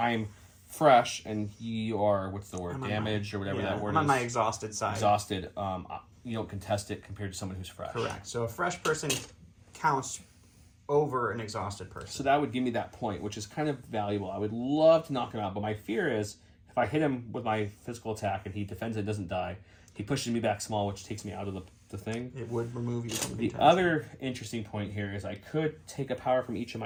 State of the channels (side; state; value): both; identical; correlation 1.00